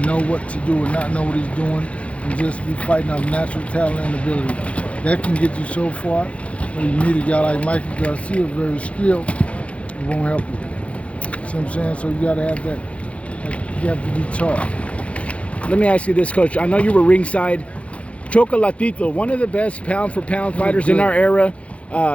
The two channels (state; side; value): late; right; 0.063 ms